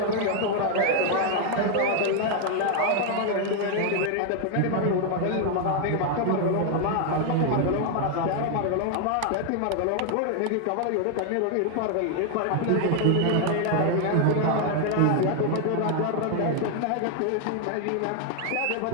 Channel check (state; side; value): different; both; correlation 0.00